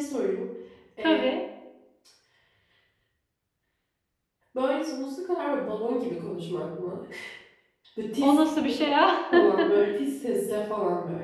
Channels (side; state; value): both; identical; correlation 1.00